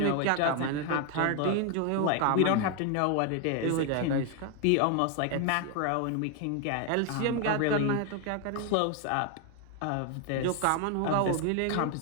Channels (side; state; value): both; different; correlation 0.01